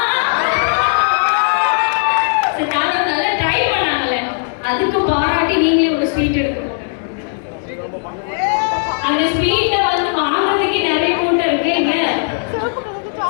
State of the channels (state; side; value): silent; right; 68 dB below the other